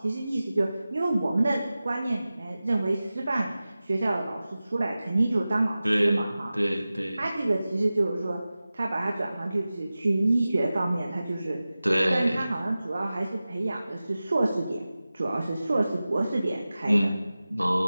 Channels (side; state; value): both; inverted; correlation -0.96